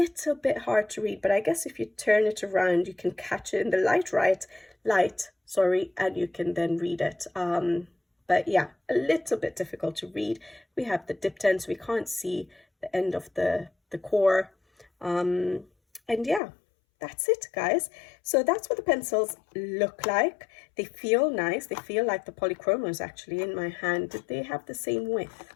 bit hard to read, but I guess if you turn it around, you can catch it in the light, and you can then read it. But yeah, a little bit difficult to read. We have the dipped end, so we can't see the end of the core. And yeah, that's it, guys. So that's what the pencils look like. They feel nice. They feel like the polychromos actually in my hand. Did they have the same width?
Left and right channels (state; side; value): drops out; right; at 16.4 s